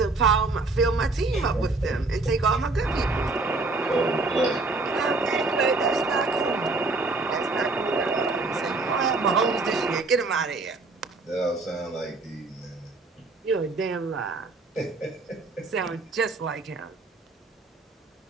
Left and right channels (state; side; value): quieter; left; 3.5 dB